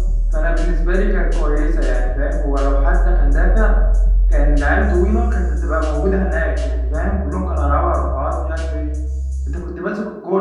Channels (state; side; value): identical; both; correlation 1.00